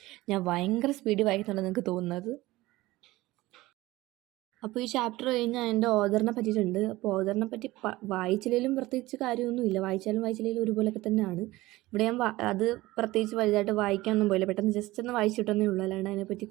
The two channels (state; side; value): quieter; left; 18.7 dB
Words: ഞാൻ ഭയങ്കര സ്പീഡിൽ വായിക്കുന്നുണ്ടെന്ന് എനിക്ക് തോന്നുന്നത്. അപ്പോൾ ഈ ചാപ്റ്റർ കഴിഞ്ഞാൽ എൻ്റെ ഓഥറിനെ പറ്റിയിട്ടുണ്ട്. അപ്പോൾ ഓഥറിനെ പറ്റി വായിച്ചില്ലെങ്കിലും പ്രത്യേകിച്ച് കാര്യമൊന്നുമില്ല. വായിച്ചില്ലെങ്കിലും ഒരുപോലെയൊക്കെ തന്നെയാണ്. ഇവിടെ ഞാൻ അത് പ്രത്യേകിച്ച് വലുതായിട്ട് വായിക്കാനൊന്നും പോയില്ല. പെട്ടെന്ന് ജസ്റ്റ് ഒന്ന് വായിച്ചിട്ടൊന്നേ ഉള്ളൂ. അല്ലാണ്ട് അതിനെപ്പറ്റി